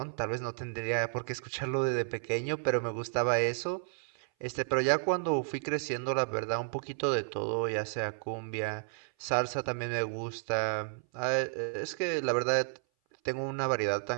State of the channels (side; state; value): left; silent; 56 dB below the other